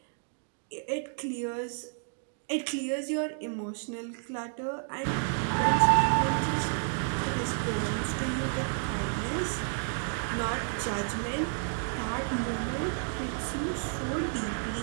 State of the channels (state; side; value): silent; left; 57 dB below the other